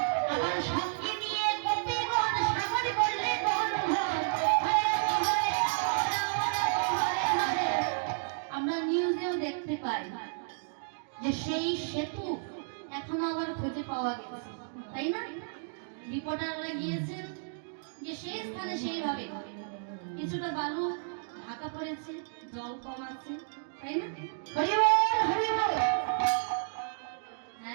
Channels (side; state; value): left; silent; digital silence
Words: आबार संगे निये गोपीगण सागर करले দেখতে পাই যে সেই সেতু এখনো আবার খুঁজে পাওয়া গেছে, তাই না? রিপোর্টাররা গিয়েছেন যে সেই স্থানে সেইভাবে কিছুটা বালু ঢাকা পড়েছে, জল কম আছে, তাই না? হরি বল হরি বল।